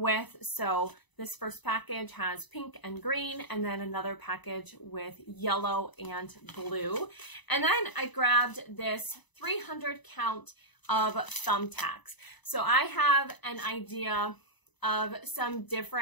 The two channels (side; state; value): right; late; 1.0 ms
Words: So this first package has pink and green, and then another package with yellow and blue. And then I grabbed this 300 count of thumbtacks. So I have an idea of some